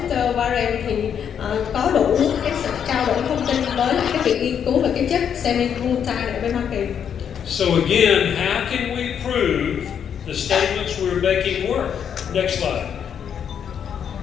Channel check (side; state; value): right; quieter; 8.2 dB